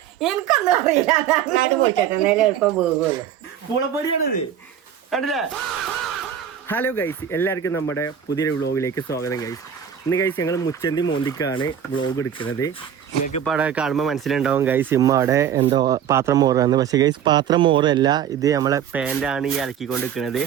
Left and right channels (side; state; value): left; quieter; 9.0 dB